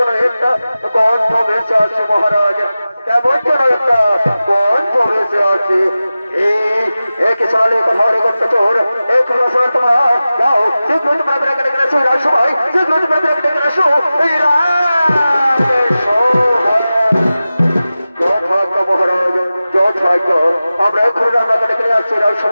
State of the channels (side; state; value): both; inverted; correlation -0.95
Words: একটা গন্ধ ভেসে আসে মহারাজ কেমন যেন একটা গন্ধ ভেসে আসে এই কিসালে কথা রে করতে চোর এই কোনো সময় তোমরা যাও শীঘ্র তোমরা বেড়ে গেলে গেছো রাজ সবাই শীঘ্র তোমরা বেড়ে গেলে গেছো এই মহারাজ যথাজ্ঞ আমরা এক্ষুনি রান্নাকে ডেকে নিয়ে আসছি রাজ